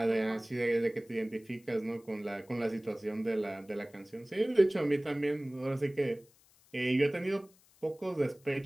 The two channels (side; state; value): left; noise; hiss, 29 dB below the sound